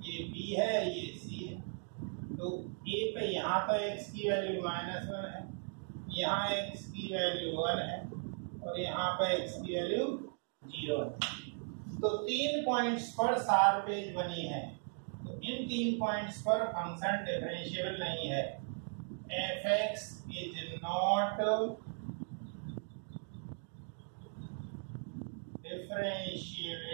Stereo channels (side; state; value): left; silent; 53 dB below the other